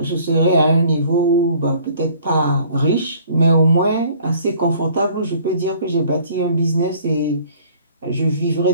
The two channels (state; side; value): inverted; both; correlation -0.54